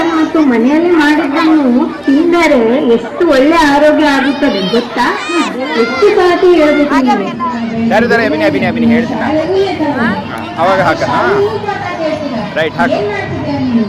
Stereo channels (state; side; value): identical; both; correlation 1.00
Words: ಮತ್ತು ಮನೆಯಲ್ಲಿ ಮಾಡಿದ್ದನ್ನು ತಿಂದರೆ ಎಷ್ಟು ಒಳ್ಳೆ ಆರೋಗ್ಯ ಆಗುತ್ತದೆ ಗೊತ್ತಾ? ಎಷ್ಟು ಸತಿ ಹೇಳ್ಬೇಕು ನೀನು. ಅಭಿನಿ ಹೇಳ್ತೀನಿ ಅವಾಗ ಹಾಕ. ರೈಟ್ ಹಾಕು.